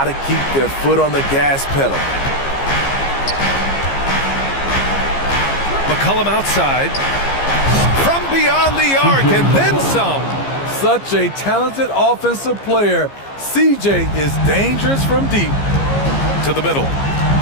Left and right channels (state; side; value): late; right; 15 ms